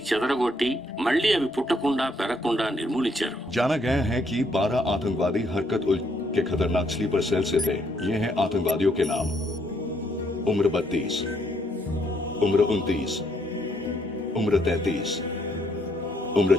చెదరగొట్టి మళ్లీ అవి పుట్టకుండా పెరగకుండా నిర్మూలించారు. जाना गया है कि 12 आतंकवादी हरकत उल के खतरनाक स्लीपर सेल से थे. ये हैं आतंकवादियों के नाम: उम्र 32, उम्र 29, उम्र 33, उम्र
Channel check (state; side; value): normal; both; correlation 0.71